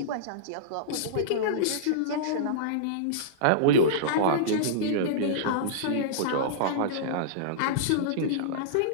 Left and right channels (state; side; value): different; both; correlation -0.03